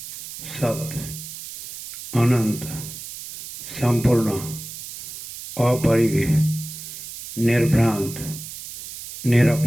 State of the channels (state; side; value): noise; right; hiss, 11 dB below the sound